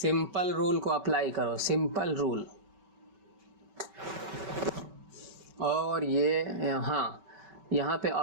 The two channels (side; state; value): left; late; 5.2 ms